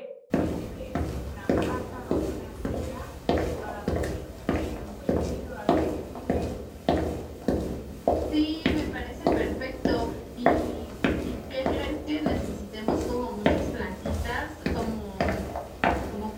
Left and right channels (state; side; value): identical; both; correlation 1.00